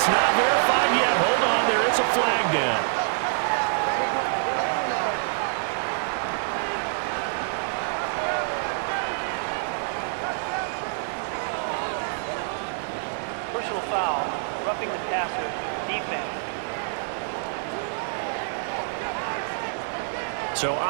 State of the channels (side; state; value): left; silent; 60 dB below the other